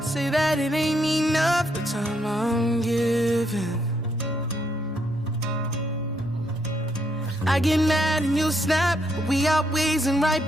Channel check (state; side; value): normal; both; correlation 0.75